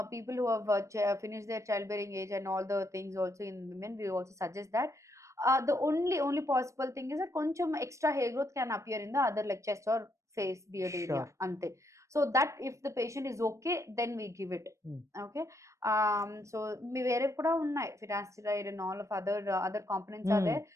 people who have finished their childbearing age and all the things also in women, we also suggest that. The only possible thing is that కొంచెం extra hair growth can appear in the other like chest or face beard area Sure. అంతే. So that if the patient is okay, then we give it. Okay. So మీ వేరేవి కూడా ఉన్నాయి, finasteride and all of other components are there.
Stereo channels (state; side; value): late; left; 0.15 ms